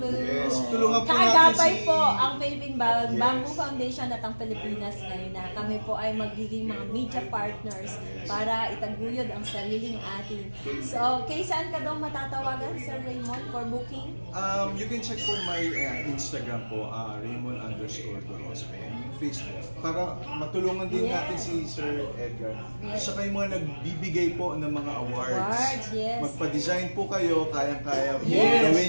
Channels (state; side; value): inverted; both; correlation -1.00